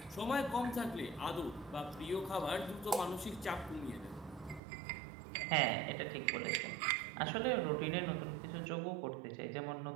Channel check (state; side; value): drops out; left; at 4.6 s